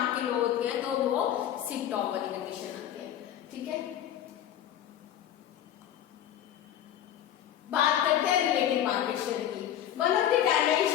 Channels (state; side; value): quieter; right; 10.8 dB